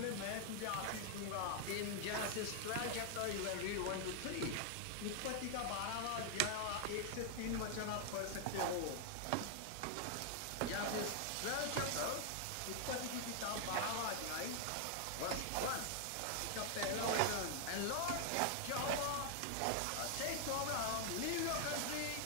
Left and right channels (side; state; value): both; different; correlation 0.00